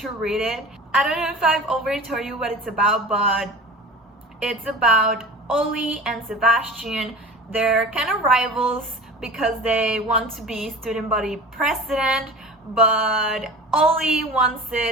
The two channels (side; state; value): both; normal; correlation 0.36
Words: read it. I don't know if I've already told you what it's about, but it's about Ollie and Sebastian. They're kind of rivals because they want to be student body president, but Ollie wants